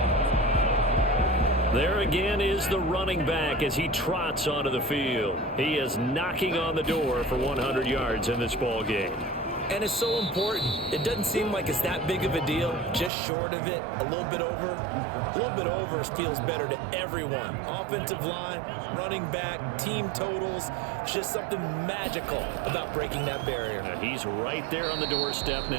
There again is the running back as he trots onto the field. He is knocking on the door for 100 yards in this ball game. And it's so important. It doesn't seem like it's that big of a deal. Just short of it, a little bit over. A little bit over feels better to everyone. Offensive line, running back, team totals. Just something magical about breaking that barrier. He's right there on the doorstep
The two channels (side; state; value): left; drops out; at 13.1 s